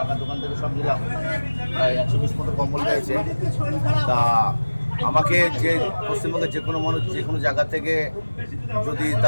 দোকান থেকে সব নিলাম। প্রায় 120 মতো কম্বল রয়েছে। তা আমাকে যে পশ্চিমবঙ্গের যে কোনো মানুষ যে কোনো জায়গা থেকে যদি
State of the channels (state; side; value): inverted; both; correlation -1.00